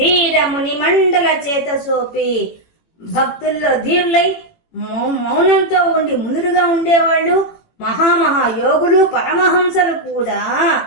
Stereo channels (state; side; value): late; right; 18 ms